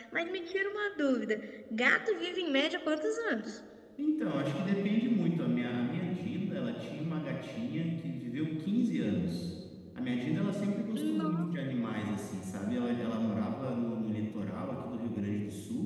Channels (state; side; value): identical; both; correlation 1.00